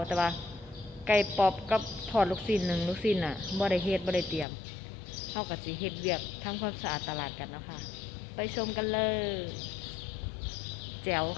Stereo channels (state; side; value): drops out; right; at 4.5 s